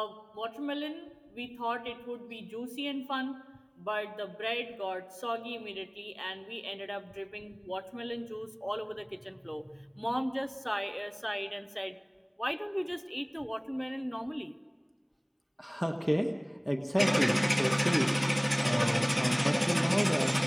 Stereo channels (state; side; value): identical; both; correlation 1.00